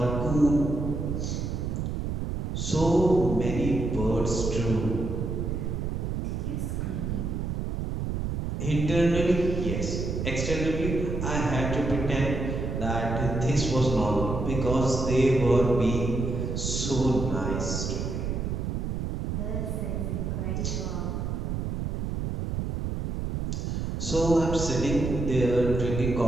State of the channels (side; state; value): right; noise; rumble, 2 dB below the sound